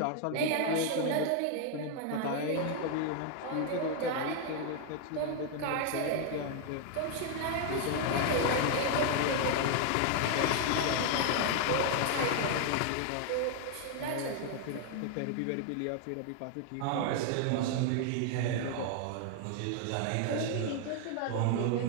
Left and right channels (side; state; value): both; different; correlation 0.00